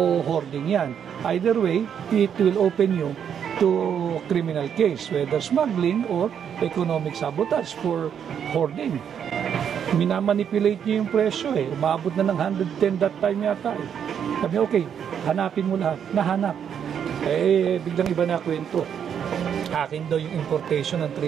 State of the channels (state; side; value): quieter; left; 8.3 dB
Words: hoarding yan. Either way, it will open you to criminal case, whether smuggling or economic sabotage for hoarding. Minamanipulate niyo yung presyo Umabot na ng 110 that time yata Sabi, okay, hanapin mo lahat. Nahanap. Biglang iba na kwento. Akin daw yung importation ng